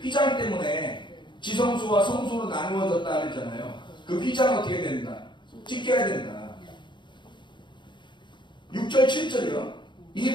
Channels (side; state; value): right; late; 0.23 ms